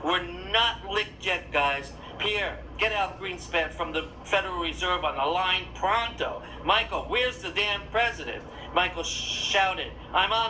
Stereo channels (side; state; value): both; identical; correlation 1.00